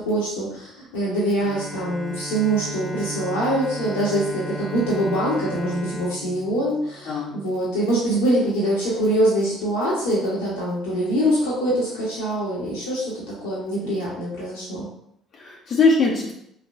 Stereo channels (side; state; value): both; normal; correlation 0.52